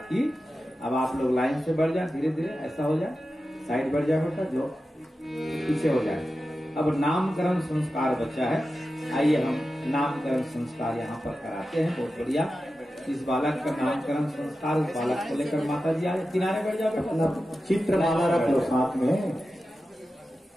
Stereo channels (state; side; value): normal; both; correlation 0.92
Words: की। अब आप लोग लाइन से बढ़ जाए, धीरे धीरे ऐसा हो जाए, साइड बढ़ जाए बेटा, जो पीछे हो जाए। अब नामकरण संस्कार बचा है, आइए हम नामकरण संस्कार यहाँ पर कराते हैं। बहुत बढ़िया। इस बालक का नामकरण संस्कार, उस बालक को लेकर माता जी आए, किनारे बैठ जाओ बेटा, चित्रमाला रख लो साथ में।